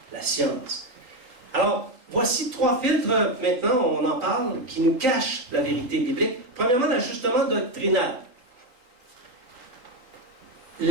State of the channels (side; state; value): left; late; 3.9 ms